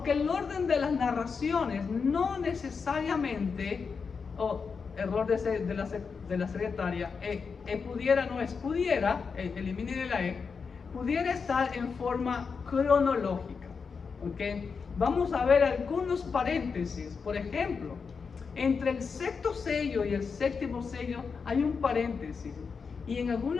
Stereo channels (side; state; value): right; quieter; 5.5 dB